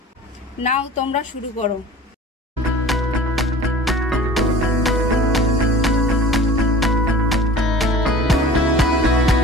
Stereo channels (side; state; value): both; normal; correlation 0.44